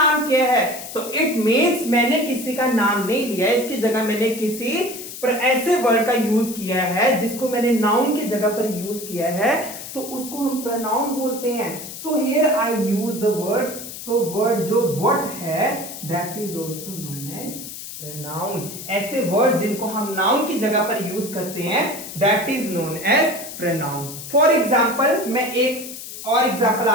क्या है। तो इट मीन्स मैंने किसी का नाम नहीं लिया, इसकी जगह मैंने किसी पर ऐसे वर्ड का यूज किया है जिसको मैंने नाउन की जगह पर यूज किया है, तो उसको हम प्रोनाउन बोलते हैं। So here I use the word, so word जो व्हाट है that is also known as pronoun. ऐसे वर्ड जिनको हम नाउन की जगह पर यूज करते हैं that is known as pronoun. For example मैं एक और एग्जाम्पल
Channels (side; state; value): left; noise; hiss, 11 dB below the sound